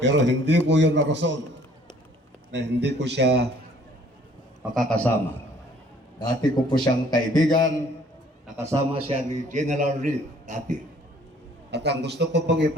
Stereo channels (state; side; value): normal; both; correlation 0.57